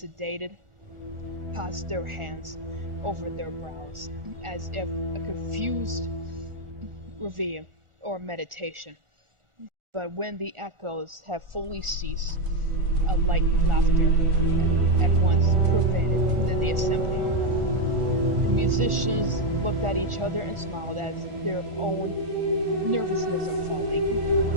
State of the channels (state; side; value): late; left; 1.4 ms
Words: passed their hands over their brows, as if a confused reverie or meditation. But when the echoes have fully ceased, a light laughter at once pervaded the assembly. The musicians looked at each other and smiled as their own nervousness of falling